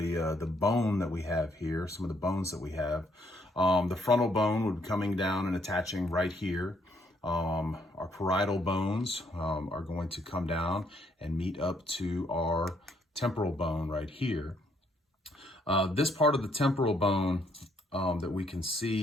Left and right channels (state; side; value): normal; both; correlation 0.70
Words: bone that we have here, some of the bones that we have. The frontal bone would be coming down and attaching right here. Our parietal bones are going to come down and meet up to our temporal bone right here. This part of the temporal bone that we can